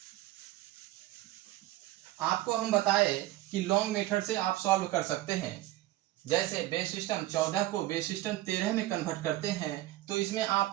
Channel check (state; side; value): quieter; left; 16.2 dB